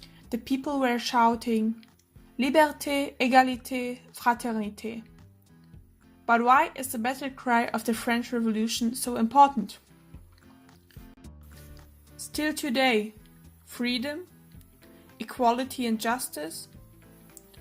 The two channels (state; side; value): identical; both; correlation 1.00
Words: The people were shouting, Liberté, égalité, fraternité. But why is the battle cry of the French Revolution so important? Still today, freedom, equality and justice,